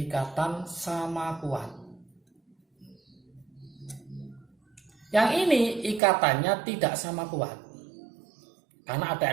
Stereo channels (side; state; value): left; drops out; at 6.0 s